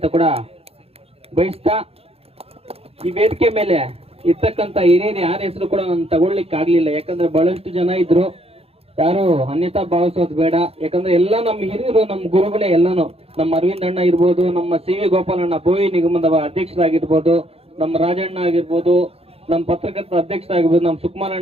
ಕೂಡ ಬಯಸ್ತಾ, ಈ ವೇದಿಕೆ ಮೇಲೆ ಇರ್ತಕ್ಕಂಥ ಹಿರಿಯರು ಯಾರ ಹೆಸರು ಕೂಡ ನಾನು ತಗೊಳ್ಲಿಕ್ಕೆ ಆಗ್ಲಿಲ್ಲ. ಯಾಕಂದ್ರೆ ಬಹಳಷ್ಟು ಜನ ಇದ್ರು, ಯಾರು ಅನ್ಯತಾ ಭಾವಿಸೋದು ಬೇಡ. ಯಾಕಂದ್ರೆ ಎಲ್ಲ ನಮ್ಮ ಹಿರಿಯರು, ನಮ್ಮ ಗುರುಗಳೇ ಎಲ್ಲಾನು. ನಮ್ಮ ಅರವಿಂದ್ ಅಣ್ಣ ಇರ್ಬೋದು, ನಮ್ಮ CV ಗೋಪಾಲಣ್ಣ ಬೋವಿ ನಿಗಮದ ಅಧ್ಯಕ್ಷರಾಗಿರ್ಬೋದು, ನಮ್ಮ ರಾಜಣ್ಣ ಆಗಿರ್ಬೋದು, ನಮ್ಮ ಪತ್ರಕರ್ತರ ಅಧ್ಯಕ್ಷರಾಗಿರ್ಬೋದು, ನಮ್ಮ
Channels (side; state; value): left; late; 0.29 ms